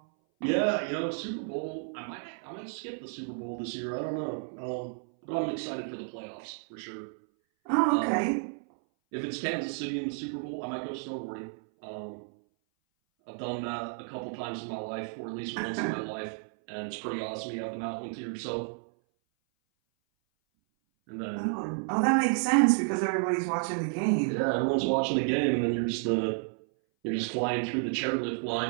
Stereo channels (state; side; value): silent; left; 57 dB below the other